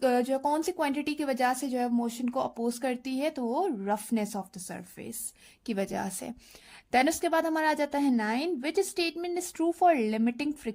जो कौन सी क्वांटिटी की वजह से जो है मोशन को अपोज करती है? तो वो रफनेस ऑफ द सरफेस की वजह से। देन उसके बाद हमारा आ जाता है 9, which statement is true for limiting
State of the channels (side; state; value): both; identical; correlation 1.00